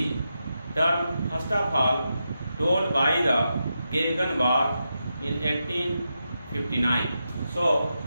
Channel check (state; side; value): inverted; both; correlation -0.87